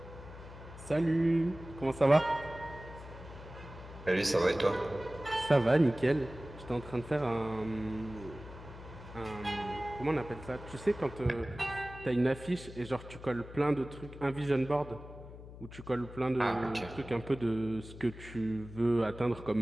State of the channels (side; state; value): left; noise; hum, 15 dB below the sound